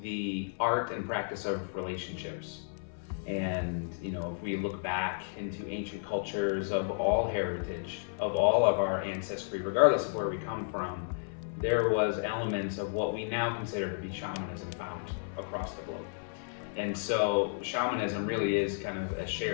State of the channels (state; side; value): silent; right; 56 dB below the other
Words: the art and practice of relationships. And, if we look back into ancient cultures of all heritage, of all of our ancestry, regardless of where we come from, there was elements of what we now consider to be shamanism found across the globe. And so shamanism really is kind of a